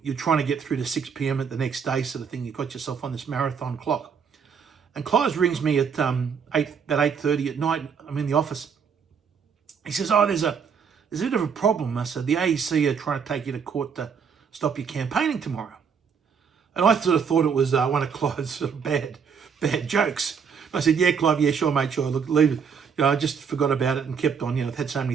trying to get through to 6 p.m. at the next day, sort of thing. You've got yourself on this marathon clock." And Clive rings me at 8:30 at night. I'm in the office. He says, "Oh, there's a bit of a problem." I said, "The AEC are trying to take you to court to stop you campaigning tomorrow." And I sort of thought it was one of Clive's sort of bad jokes. I said, "Yeah, Clive, yeah, sure, mate, sure. Look, leave it. I just forgot about it and kept on. I've had so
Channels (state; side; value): quieter; left; 6.5 dB